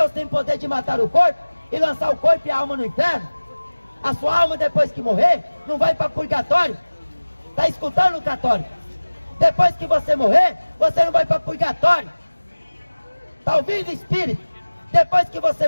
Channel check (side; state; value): both; inverted; correlation -1.00